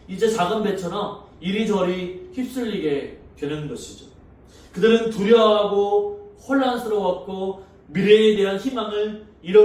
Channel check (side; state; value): both; identical; correlation 1.00